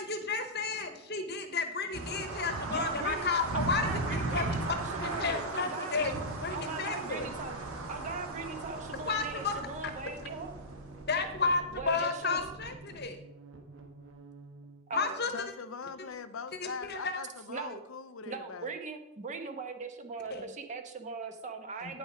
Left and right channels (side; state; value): both; normal; correlation -0.13